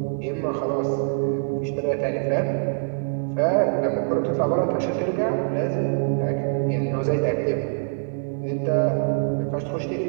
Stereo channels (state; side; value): silent; left; digital silence